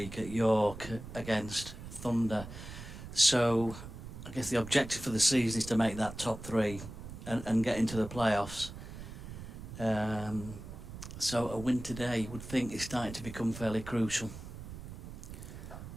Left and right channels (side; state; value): right; noise; rumble, 11 dB below the sound